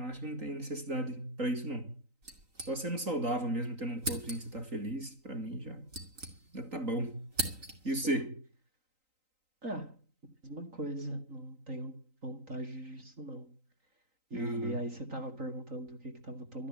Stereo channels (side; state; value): left; late; 3.9 ms